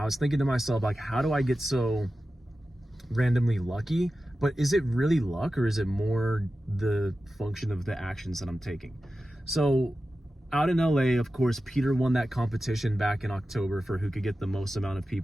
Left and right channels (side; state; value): both; normal; correlation 0.93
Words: was thinking to myself, like, how do I get so randomly lucky? But is it really luck, or is it more the function of the actions that I'm taking? So out in LA, of course, Peter won that competition back in October for who could get the most amount of